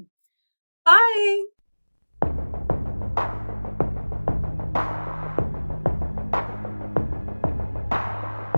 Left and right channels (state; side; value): inverted; both; correlation -1.00